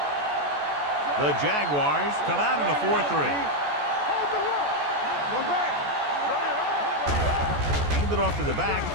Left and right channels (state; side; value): late; left; 14 ms